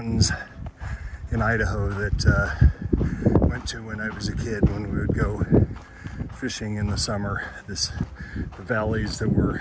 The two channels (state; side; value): identical; both; correlation 1.00